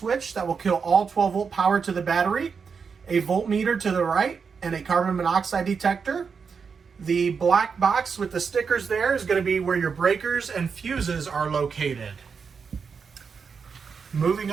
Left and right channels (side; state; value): left; quieter; 5.8 dB